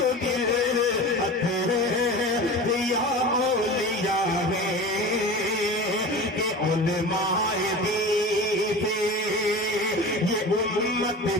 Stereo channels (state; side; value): normal; both; correlation 0.33